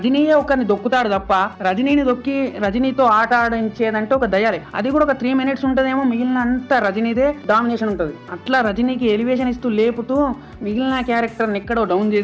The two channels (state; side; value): identical; both; correlation 1.00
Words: ఒకరిని దొక్కుతాడు తప్ప రజనీని దొక్కి రజనీతో ఆట ఆడించేదంటే ఒక దయాలే. అది కూడా ఒక 3 minutes ఉంటదేమో, మిగిలిన అంతా రజనీదే డామినేషన్ ఉంటది. అట్లా రజనీకి ఎలివేషన్ ఇస్తూ లేపుతూ మిగిలిన క్యారెక్టర్ ఎక్కడో డౌన్